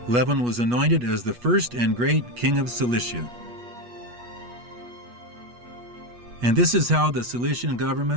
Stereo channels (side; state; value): left; late; 8.3 ms